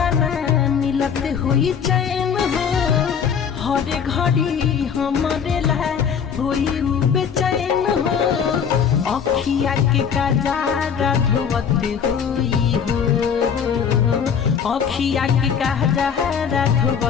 मिलत हुई चैन हो हर घड़ी हमारे ला हुई बेचैन हो अखिया के कजारा धोवत हुई हो अखिया के कजारा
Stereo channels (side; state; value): right; quieter; 7.2 dB